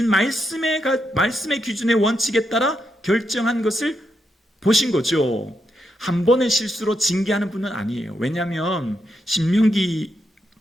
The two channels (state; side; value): normal; both; correlation 0.83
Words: 말씀의 기준의 원칙에 따라 결정한 것을 보신 거죠. 한 번의 실수로 징계하는 분은 아니에요. 왜냐하면 신명기